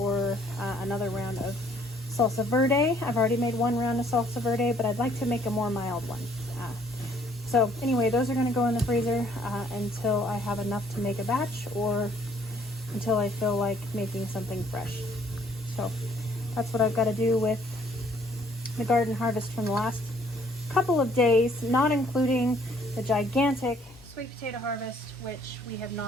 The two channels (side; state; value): both; normal; correlation 0.62